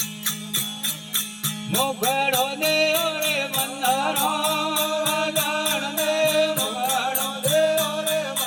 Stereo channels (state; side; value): identical; both; correlation 1.00